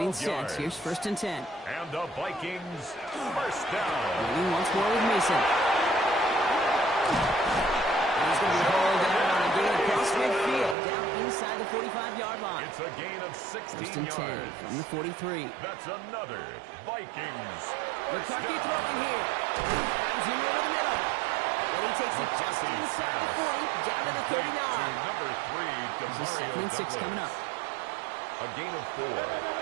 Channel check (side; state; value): left; drops out; at 10.8 s